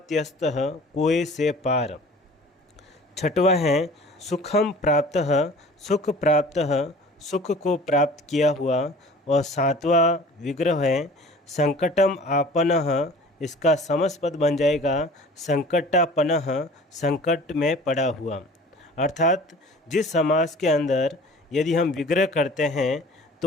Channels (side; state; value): both; normal; correlation 0.45